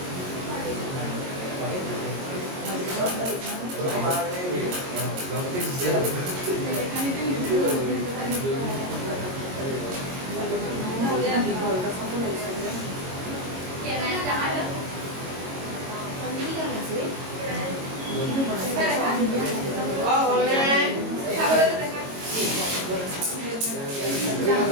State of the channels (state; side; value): late; left; 22 ms